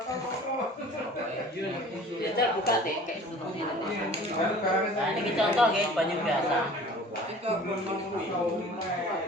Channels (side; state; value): both; normal; correlation 0.45